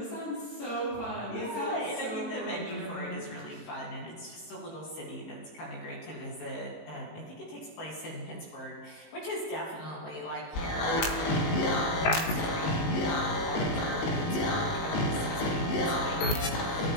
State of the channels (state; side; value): late; right; 19 ms